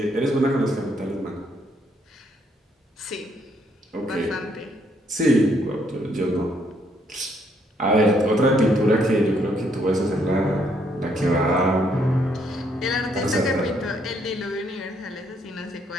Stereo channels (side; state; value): both; normal; correlation 0.71